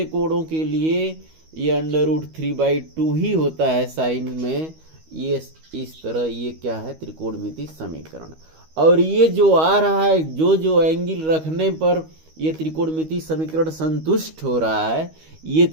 कोणों के लिए ये √3/2 ही होता है साइन में। ये इस तरह ये क्या है? त्रिकोणमितीय समीकरण। और ये जो आ रहा है, जो एंगल रखने पर ये त्रिकोणमितीय समीकरण संतुष्ट हो रहा है, ये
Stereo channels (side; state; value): left; late; 13 ms